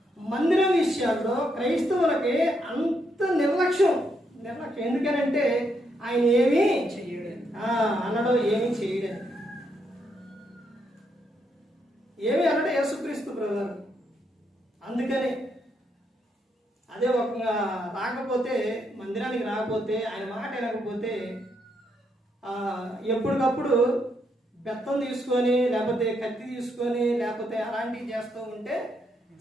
మందిరం విషయాల్లో క్రైస్తవులకి అంత నిర్లక్ష్యం. ఎందుకనంటే ఆయన ఏమీ అనడం, ఏమీ చేయడం, ఏమి అనడం యేసుక్రీస్తు ప్రభువు. అందుకనే అదే ఒక రాకపోతే, మందిరానికి రాకపోతే, ఆయన మాట వినకపోతే ఎప్పటికప్పుడు బెత్తం తీసుకొని లేకపోతే కత్తి తీసుకొని లేకపోతే అలాంటివి చేస్తూ ఉంటే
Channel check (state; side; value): normal; both; correlation 0.77